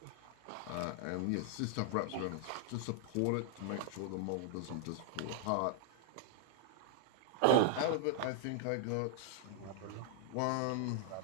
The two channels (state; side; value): different; both; correlation -0.01